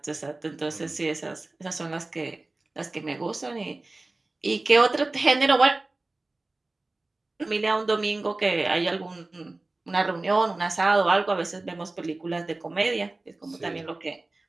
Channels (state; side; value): quieter; left; 3.1 dB